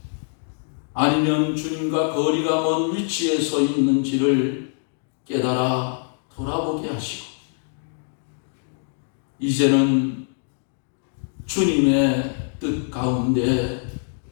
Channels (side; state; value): right; silent; 63 dB below the other